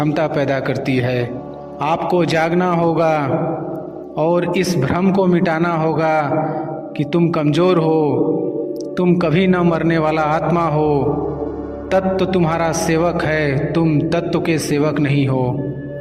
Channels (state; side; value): identical; both; correlation 1.00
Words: पैदा करती है। आपको जागना होगा और इस भ्रम को मिटाना होगा कि तुम कमज़ोर हो, तुम कभी न मरने वाला आत्मा हो। तत्व तुम्हारा सेवक है, तुम तत्व के सेवक नहीं हो।